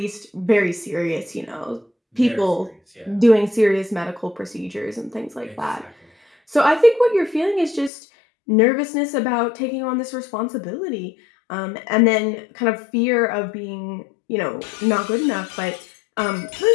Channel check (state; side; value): drops out; right; at 7.9 s